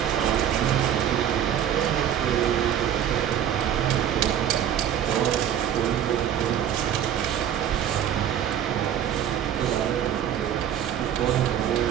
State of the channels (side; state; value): left; quieter; 10.0 dB